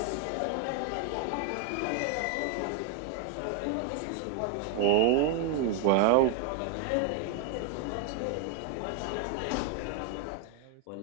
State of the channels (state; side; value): different; both; correlation 0.00